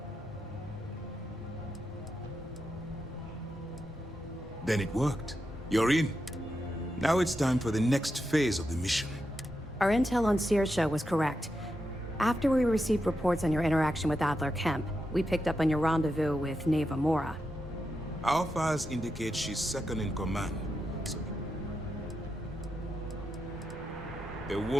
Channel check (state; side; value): normal; both; correlation 0.87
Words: Then it worked. You're in. Now it's time for the next phase of the mission. Our intel on Saoirse was correct. After we received reports on your interaction with Adler Kemp, we picked up on your rendezvous with Neva Mora. Our files indicate she's second in command. So the